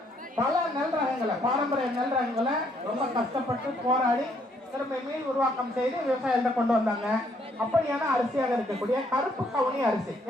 பல நெல் ரகங்களை, பாரம்பரிய நெல் ரகங்களை ரொம்ப கஷ்டப்பட்டு போராடி திரும்ப மீள் உருவாக்கம் செய்து விவசாயத்தை கொண்டு வந்தாங்க. அப்படியான அரிசியாக இருக்கக்கூடிய கருப்பு கவுனி அரிசி.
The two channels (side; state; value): both; normal; correlation 0.69